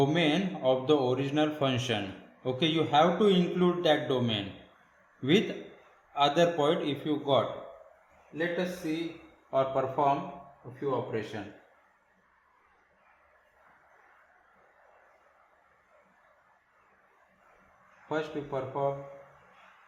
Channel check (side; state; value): both; identical; correlation 1.00